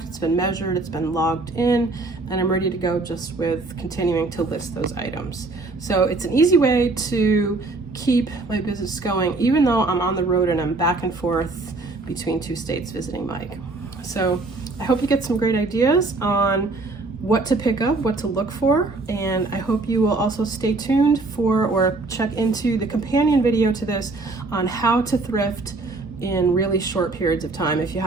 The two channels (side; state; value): left; quieter; 3.4 dB